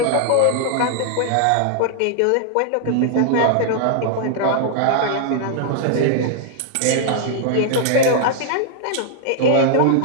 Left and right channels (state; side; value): different; both; correlation -0.01